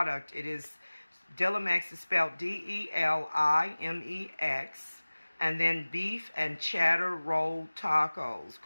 It is, Delimex is spelled D-E-L-I-M-E-X, and then beef and cheddar rolled tacos,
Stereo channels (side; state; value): both; inverted; correlation -1.00